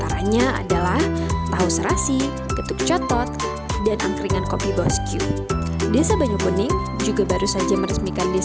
adalah tahu serasi, getuk cotot, dan angkringan kopi bosku. Desa Banyukuning juga baru saja meresmikan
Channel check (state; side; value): identical; both; correlation 1.00